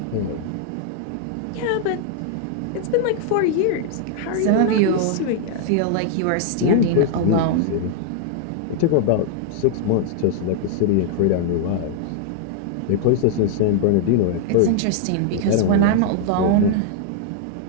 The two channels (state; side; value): different; both; correlation 0.00